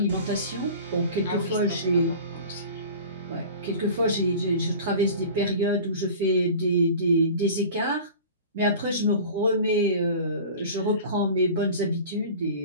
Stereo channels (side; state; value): both; inverted; correlation -0.39